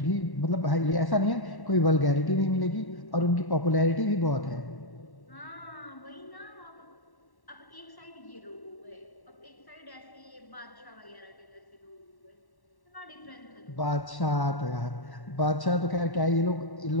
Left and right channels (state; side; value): late; right; 1.1 ms